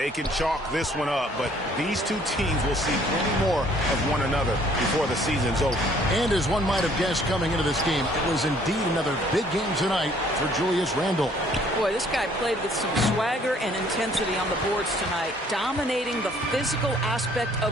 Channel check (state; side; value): normal; both; correlation 0.60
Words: can chalk this one up, but these two teams will see plenty more of one another before the season's over. And as one might have guessed coming into this game, it was indeed another big game tonight for Julius Randle. Boy, this guy played with some swagger and intensity on the boards tonight, dominating the physical aspect